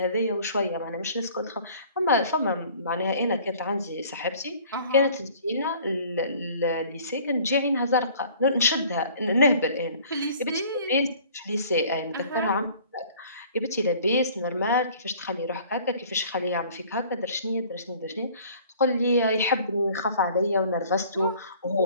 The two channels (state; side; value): inverted; both; correlation -0.51